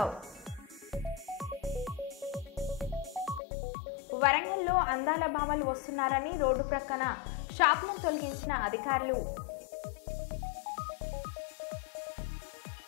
వరంగల్లో అందాల భామలు వస్తున్నారని రోడ్డు ప్రక్కన షాపులను తొలగించిన అధికారులు.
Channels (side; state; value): right; drops out; at 3.4 s